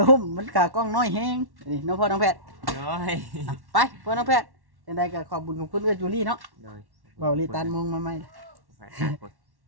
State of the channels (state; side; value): late; left; 1.1 ms